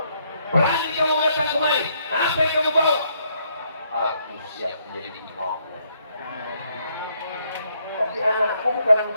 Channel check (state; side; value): inverted; both; correlation -0.72